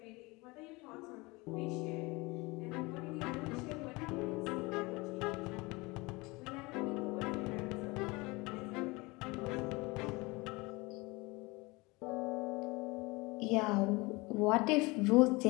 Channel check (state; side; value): quieter; right; 24.3 dB